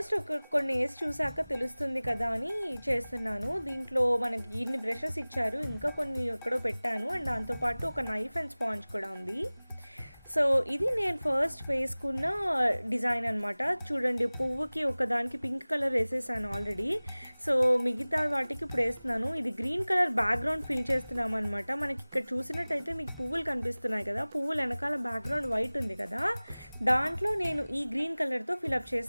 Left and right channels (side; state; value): both; inverted; correlation -0.99